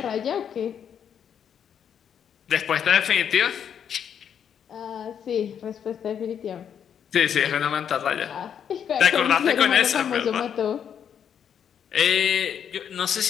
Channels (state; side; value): quieter; right; 8.3 dB